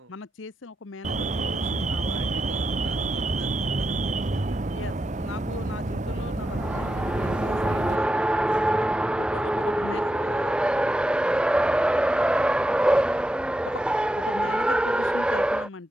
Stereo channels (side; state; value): both; normal; correlation 0.87